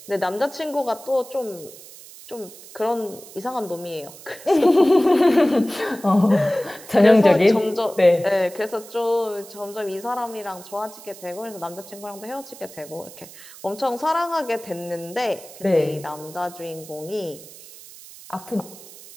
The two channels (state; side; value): noise; right; hiss, 18 dB below the sound